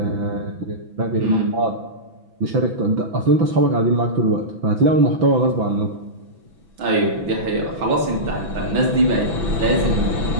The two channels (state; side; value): late; left; 6.0 ms